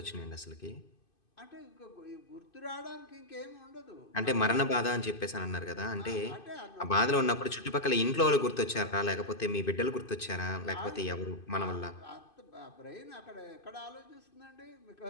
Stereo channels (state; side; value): late; right; 2.5 ms